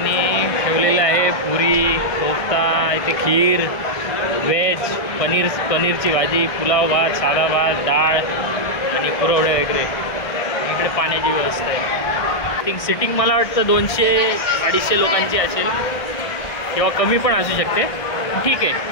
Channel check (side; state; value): right; late; 1.6 ms